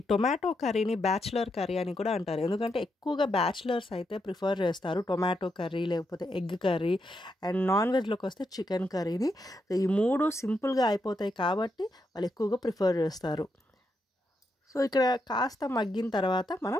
టొమాటో కర్రీని బ్యాచిలర్ కర్రీ అని కూడా అంటారు. ఎందుకంటే ఎక్కువగా బ్యాచిలర్స్ అయితే ప్రిఫర్ చేస్తారు టొమాటో కర్రీ, లేకపోతే ఎగ్ కర్రీ అండ్ నాన్ వెజ్లోకి వస్తే చికెన్ కర్రీని. ఈ 3 సింపుల్గా అయిపోతాయి కాబట్టి వాళ్ళు ఎక్కువగా ప్రిఫర్ చేస్తారు. సో ఇక్కడ కాస్త మగ్గిన తర్వాత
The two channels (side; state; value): both; normal; correlation 0.82